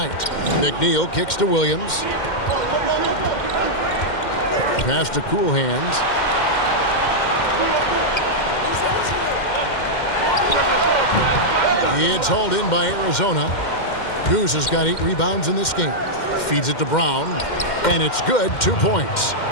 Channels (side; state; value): right; late; 2.1 ms